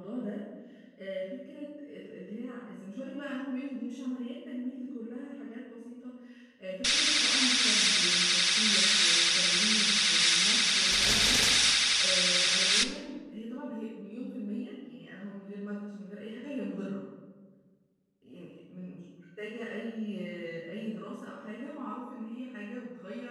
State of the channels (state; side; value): identical; both; correlation 1.00